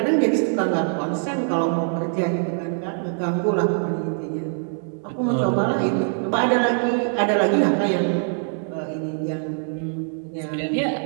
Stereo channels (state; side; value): silent; left; 63 dB below the other